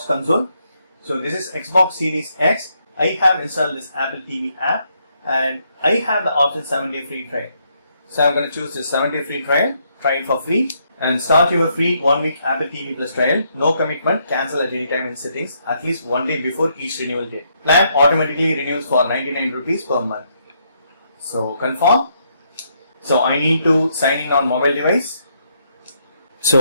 console. So this is Xbox Series X. I have installed this Apple TV app and I have the option 7-day free trial. So I'm going to choose this 7-day free trial, try it for free and start your free 1-week Apple TV Plus trial. No commitment, cancel at any time in settings, at least 1 day before each renewal date. Plan automatically renews for 99 rupees per month. So confirm. So I need to sign in on mobile device.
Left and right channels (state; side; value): inverted; both; correlation -0.75